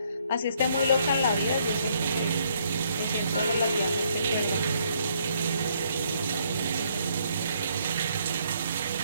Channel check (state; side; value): inverted; both; correlation -0.69